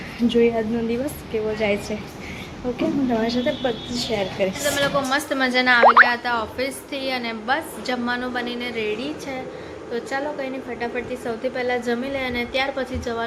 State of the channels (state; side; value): identical; both; correlation 1.00